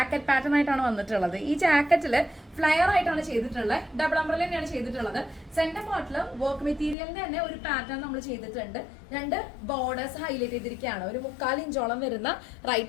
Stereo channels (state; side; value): drops out; right; at 7.0 s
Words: പാറ്റേൺ ആയിട്ടാണ് വന്നിട്ടുള്ളത്. ഈ ജാക്കറ്റില് ഫ്ലയർ ആയിട്ടാണ് ചെയ്തിട്ടുള്ളത്. ഡബിൾ അംബ്രല്ല തന്നെയാണ് ചെയ്തിട്ടുള്ളത്. സെന്റർ പാർട്ടില് വർക്ക് മെറ്റീരിയലിന്റെ തന്നെ ഒരു പാറ്റേൺ നമ്മൾ ചെയ്തിട്ടുണ്ട്. രണ്ട് ബോർഡേഴ്സ് ഹൈലൈറ്റ് ചെയ്തിരിക്കുകയാണ്. ഒരു 3/4 ഇഞ്ചോളം വരുന്ന